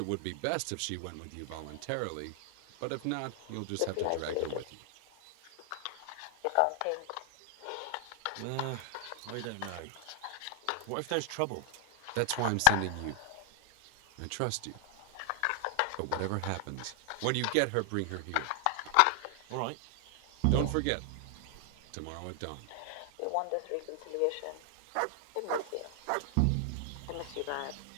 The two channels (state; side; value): different; both; correlation 0.00